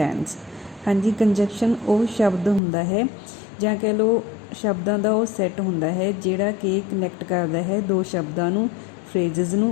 ਹਾਂਜੀ, ਕੰਜੰਕਸ਼ਨ ਉਹ ਸ਼ਬਦ ਹੁੰਦਾ ਹੈ ਜਾਂ ਕਹਿ ਲਓ ਸ਼ਬਦਾਂ ਦਾ ਉਹ ਸੈੱਟ ਹੁੰਦਾ ਹੈ ਜਿਹੜਾ ਕਿ ਕਨੈਕਟ ਕਰਦਾ ਹੈ ਦੋ ਸ਼ਬਦਾਂ ਨੂੰ, ਫਰੇਜ਼ਿਸ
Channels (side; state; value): right; drops out; at 2.6 s